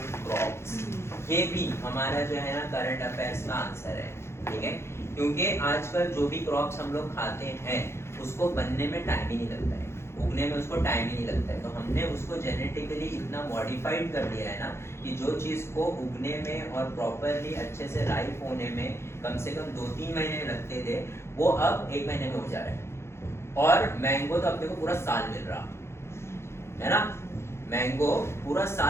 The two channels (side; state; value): right; late; 0.13 ms